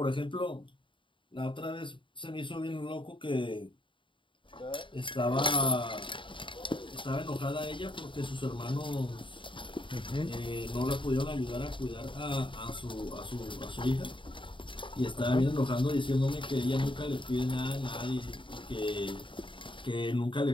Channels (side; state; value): right; late; 0.24 ms